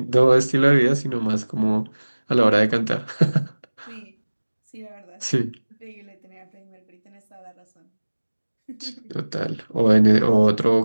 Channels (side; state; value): both; inverted; correlation -1.00